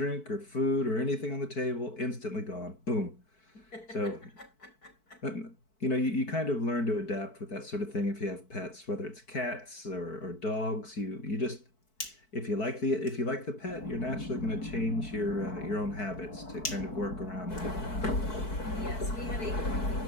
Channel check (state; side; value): late; right; 4.6 ms